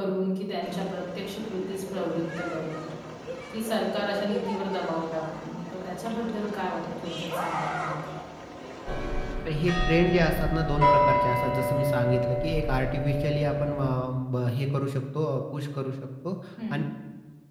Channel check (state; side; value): identical; both; correlation 1.00